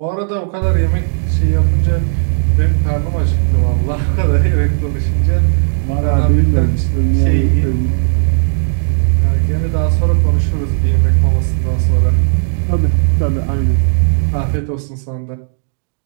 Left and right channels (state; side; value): silent; left; digital silence